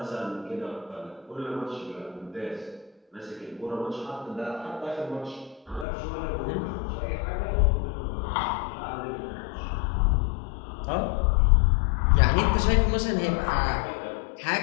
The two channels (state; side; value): drops out; right; at 5.9 s